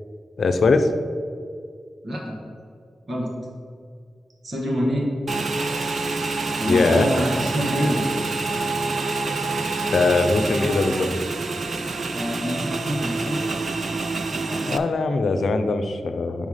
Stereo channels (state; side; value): normal; both; correlation 0.87